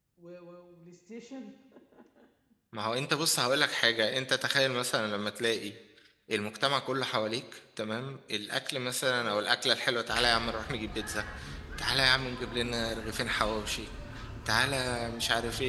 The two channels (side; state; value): both; identical; correlation 1.00